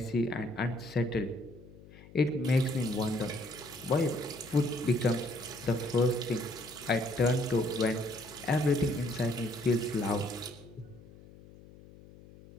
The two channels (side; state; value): left; noise; hum, 21 dB below the sound